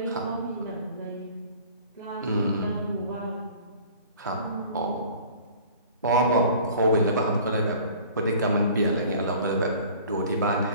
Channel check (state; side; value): inverted; both; correlation -0.47